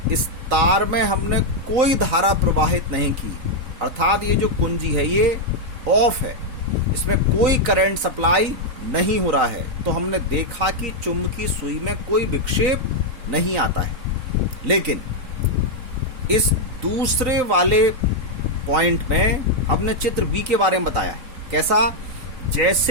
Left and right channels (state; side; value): late; left; 3.9 ms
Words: इस तार में हमने कोई धारा प्रवाहित नहीं की, अर्थात ये जो कुंजी है ये ऑफ है, इसमें कोई करंट सप्लाई नहीं हो रहा है, तो हमने देखा कि चुंबकीय सुई में कोई विक्षेप नहीं आता है। लेकिन इस दूसरे वाले पॉइंट में हमने चित्र बी के बारे में बताया है। कैसा,